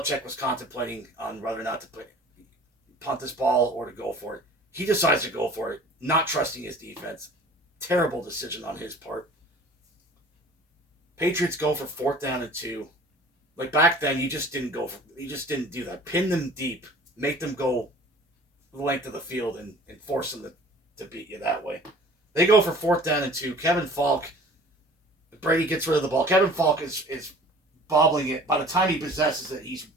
was contemplating on whether or not to punt this ball or to go for it. He decides to go for it, not trusting his defense. Terrible decision on his part. Patriots go for fourth down and 2. Like back then, you just didn't do that. Pin them deep, make them go the length of the field, and force them to beat you that way. They go for fourth down and 2. Kevin Falk, Brady gets rid of the ball. Kevin Falk is bobbling it. By the time he possesses it, he's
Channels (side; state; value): both; normal; correlation 0.47